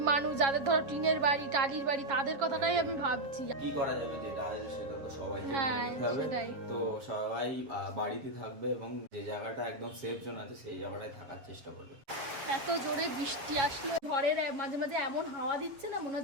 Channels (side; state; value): left; late; 7.6 ms